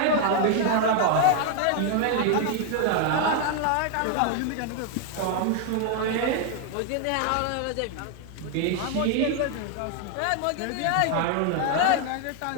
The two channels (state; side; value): different; both; correlation 0.00